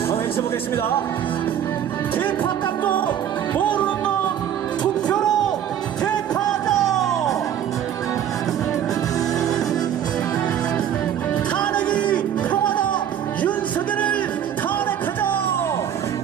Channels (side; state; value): left; quieter; 9.7 dB